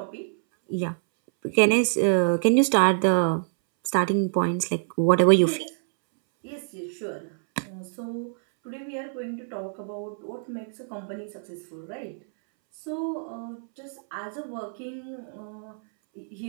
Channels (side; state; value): left; silent; 61 dB below the other